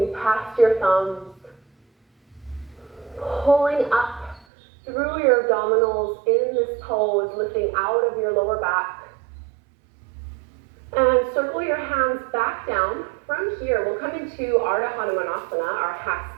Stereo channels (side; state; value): left; drops out; at 4.5 s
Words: past your thumbs, pulling up through your abdominals in this pose, lifting out of your lower back. And circle your hands back down. From here, we'll come into Hanumanasana, our half